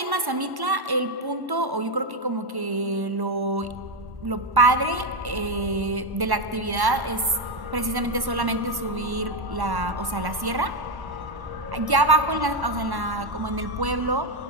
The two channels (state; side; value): late; left; 1.1 ms